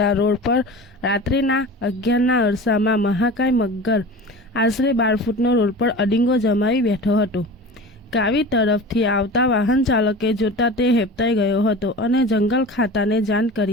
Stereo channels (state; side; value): normal; both; correlation 0.35